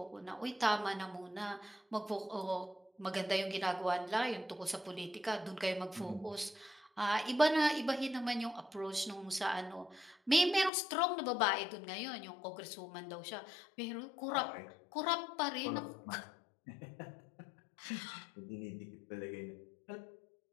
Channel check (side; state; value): right; drops out; at 10.7 s